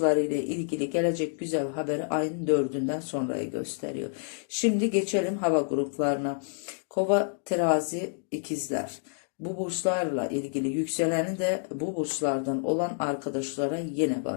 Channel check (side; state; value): right; silent; digital silence